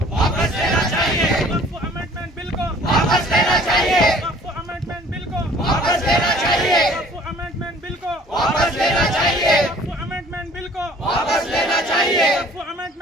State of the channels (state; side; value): normal; both; correlation 0.53